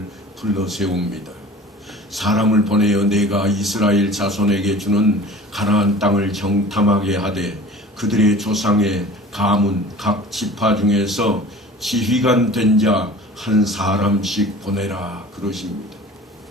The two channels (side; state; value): both; normal; correlation 0.42